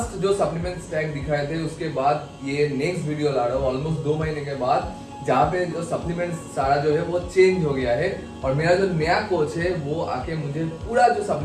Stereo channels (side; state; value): both; identical; correlation 1.00